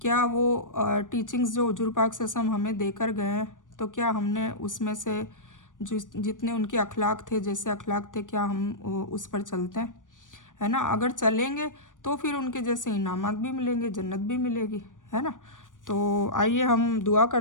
क्या वो टीचिंग्स जो हुजूर पाक सल्लल्लाहु अलैहि वसल्लम हमें देकर गए हैं, तो क्या हमने उसमें से जितने उनके अखलाक थे, जैसे अखलाक थे, क्या हम उस पर चलते हैं, है ना। अगर चलेंगे तो फिर उनके जैसे इनामात भी मिलेंगे, जन्नत भी मिलेगी, है ना। तो आइए हम दुआ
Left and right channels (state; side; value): late; right; 0.88 ms